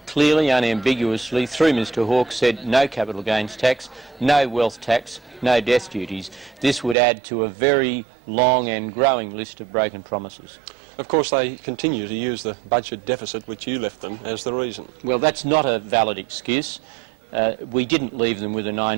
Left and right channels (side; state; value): left; drops out; at 7.0 s